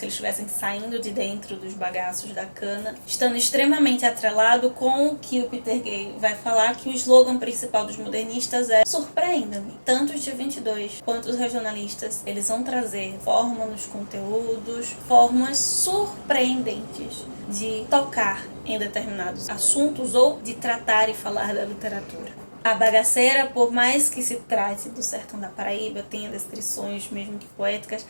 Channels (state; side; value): inverted; both; correlation -1.00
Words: eles estivessem saindo de dentro dos bagaços da cana, estando extremamente atrelado com o que o Peter Gay vai falar, que o slogan principal dos modernistas é "Surpreenda-me". Tanto os de 22 quanto os regionalistas, eles vão trazer forma nos conteúdos, formas surpreendentes de tocar em determinados assuntos ou de tratar e falar da literatura. A bagaceira, por mais que se trate do sertão da Paraíba, tenha descrições mesmo que poéticas,